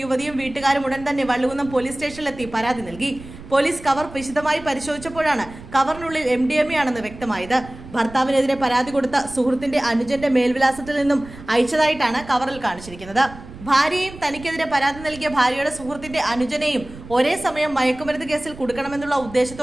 യുവതിയും വീട്ടുകാരും ഉടൻ തന്നെ വള്ളുകുന്നം പോലീസ് സ്റ്റേഷനിലെത്തി പരാതി നൽകി. പോലീസ് കവർ വിശദമായി പരിശോധിച്ചപ്പോഴാണ് കവറിനുള്ളിൽ MDMA ആണെന്ന് വ്യക്തമായത്. ഭർത്താവിനെതിരെ പരാതി കൊടുത്ത സുഹൃത്തിന്റെ അനുജന്റെ മേൽവിലാസത്തിൽ നിന്നും അയച്ചതായിട്ടാണ് കവറിൽ കാണിച്ചിരിക്കുന്നത്. ഭാര്യയും തനിക്കെതിരെ പരാതി നൽകിയ ഭാര്യയുടെ സുഹൃത്തിന്റെ അനുജനെയും ഒരേ സമയം മയക്കുമരുന്ന് കേസിൽ കൊടുക്കണമെന്നുള്ള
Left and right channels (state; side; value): noise; right; rumble, 16 dB below the sound